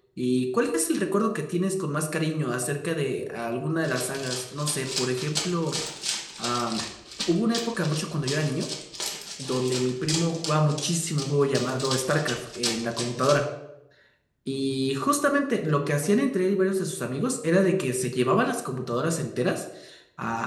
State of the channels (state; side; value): identical; both; correlation 1.00